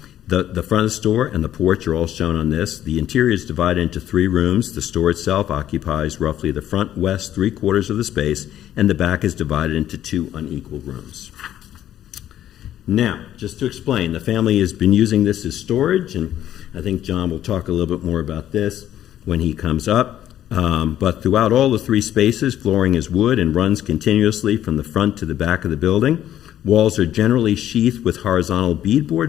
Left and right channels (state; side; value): quieter; right; 11.7 dB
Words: The front of the store and the porch are all shown on this. The interior is divided into 3 rooms. The store itself occupies roughly the front west 3/4 of the space, and the back is divided into 2 unequal rooms. Now, just to explain, the family has been using this as storage, and I think John will talk a little bit more about this when he comes up. But throughout all the 3 spaces, flooring is wood and runs continuously from the front to the back of the building. Walls are generally sheathed with horizontal